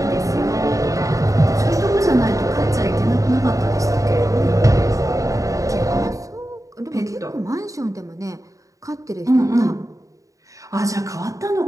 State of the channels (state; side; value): late; left; 0.16 ms